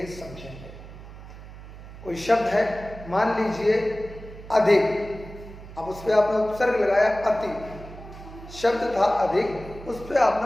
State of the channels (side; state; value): right; noise; hum, 15 dB below the sound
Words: समझेंगे। कोई शब्द है, मान लीजिए अधिक, अब उस पर आपने उपसर्ग लगाया अति। शब्द था अधिक, उस पर